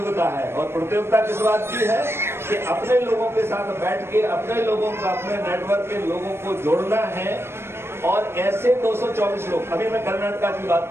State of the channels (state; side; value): late; left; 0.12 ms